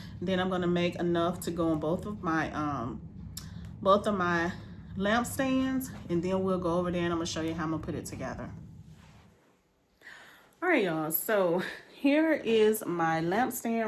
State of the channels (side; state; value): both; identical; correlation 1.00